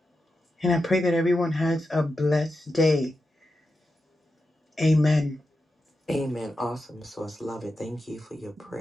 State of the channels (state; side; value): normal; both; correlation 0.89